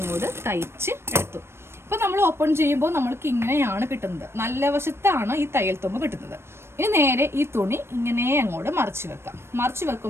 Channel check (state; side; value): late; left; 0.12 ms